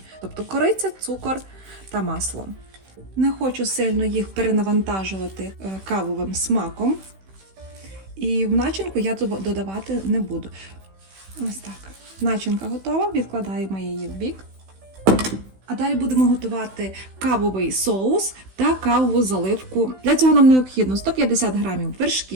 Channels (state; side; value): late; left; 16 ms